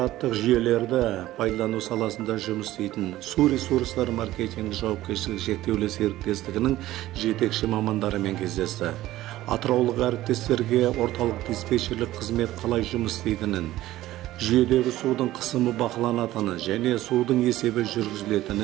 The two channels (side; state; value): left; quieter; 15.4 dB